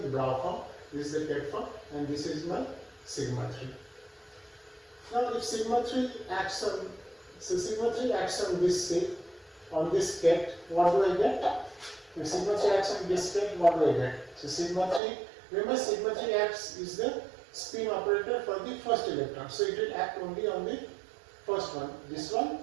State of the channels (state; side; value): drops out; left; at 15.0 s